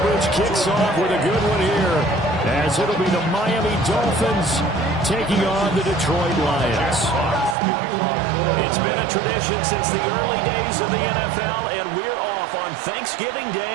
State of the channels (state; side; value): drops out; left; at 7.6 s